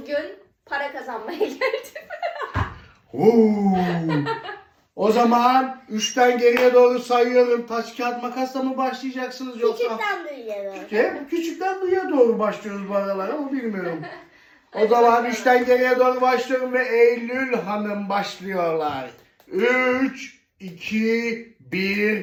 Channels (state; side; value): identical; both; correlation 1.00